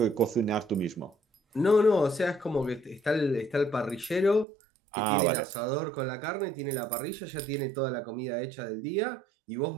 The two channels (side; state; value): left; drops out; at 4.5 s